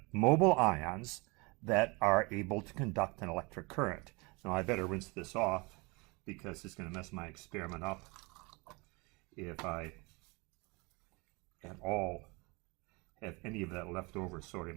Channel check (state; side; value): quieter; left; 27.4 dB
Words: mobile ions that are able to conduct an electric current. Now I better rinse this off because it's going to mess my experiment up if I at all have any of that leftover